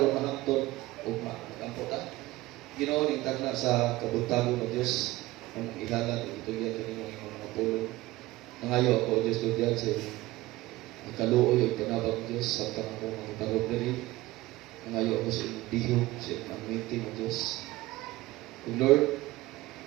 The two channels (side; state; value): left; quieter; 18.3 dB